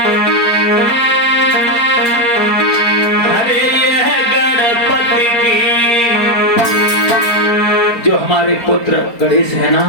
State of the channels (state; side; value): late; right; 4.3 ms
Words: अरे ये गणपति की, जो हमारे पुत्र गणेश है ना,